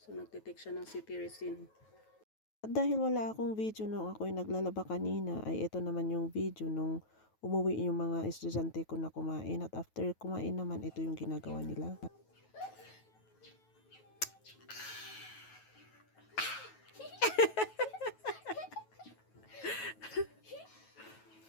nagtitake siya ng cetirizine. At dahil wala akong video nung ako'y naglalaba kanina, ay ito naman yung video nung umuwi yung mga estudyante ko na kumain. At after kumain naman, ito yung ginagawa nila.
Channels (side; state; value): right; late; 9.2 ms